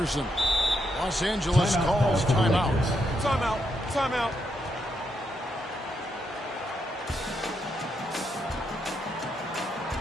Los Angeles calls timeout. Timeout. Timeout.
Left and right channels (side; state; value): both; normal; correlation 0.80